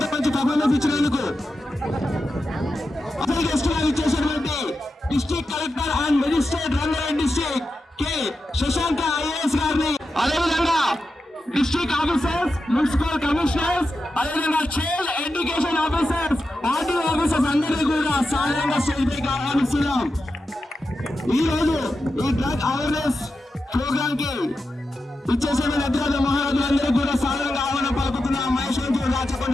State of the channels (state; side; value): normal; both; correlation 0.90